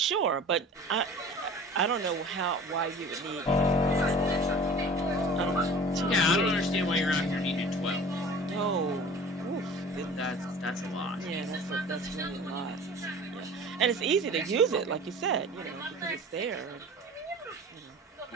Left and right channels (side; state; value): both; normal; correlation 0.42